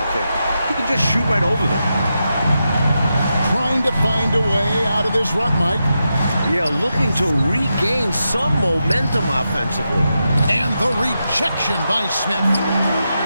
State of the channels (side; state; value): both; inverted; correlation -0.87